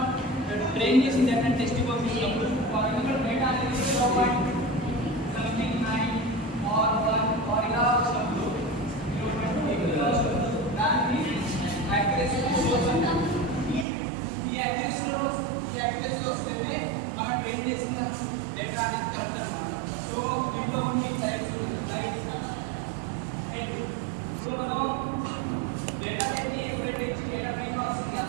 ట్రైన్ చేసిన డేటా టెస్ట్ పంపించినప్పుడు ఫర్ ఎగ్జాంపుల్ డేటా అనేది 0.79 ఆర్ 1 ఆర్ ఇలా వచ్చినప్పుడు దానికి యాక్యురసీ సోర్స్ అంటారు. ఈ యాక్యురసీ వస్తేనే మనం ట్రైన్ చేసిన డేటా అనేది కరెక్ట్ అనమాట. సో దీంట్లో కొన్ని టైప్స్ ఉన్నాయి. సో మనం డేటా సెట్ని ఎప్పుడైతే డేటా ప్రీ ప్రాసెసింగ్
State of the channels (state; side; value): drops out; left; at 13.9 s